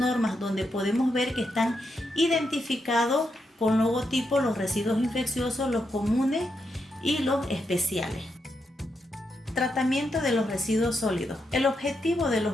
donde podemos ver que están identificados con logotipo los residuos infecciosos, los comunes y los especiales. Tratamiento de los residuos sólidos. El objetivo de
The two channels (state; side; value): normal; both; correlation 0.83